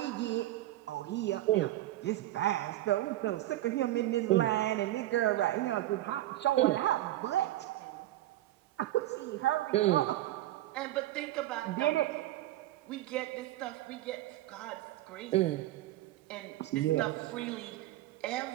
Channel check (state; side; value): quieter; left; 15.1 dB